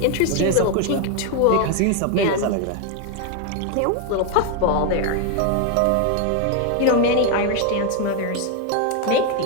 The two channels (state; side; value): different; both; correlation 0.01